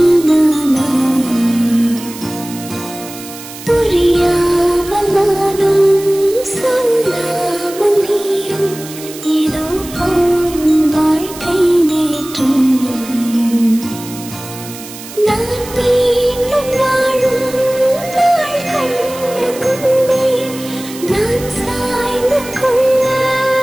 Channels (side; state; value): right; noise; hiss, 14 dB below the sound